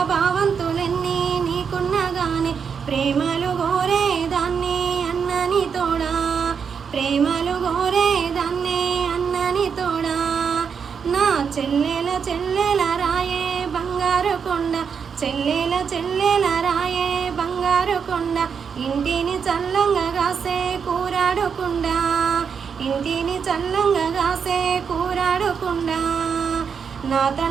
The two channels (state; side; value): quieter; left; 6.5 dB